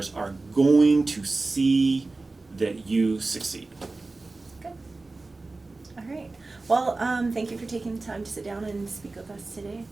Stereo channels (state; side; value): quieter; left; 3.4 dB